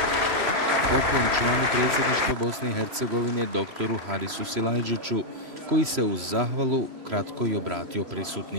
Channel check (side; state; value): left; late; 3.0 ms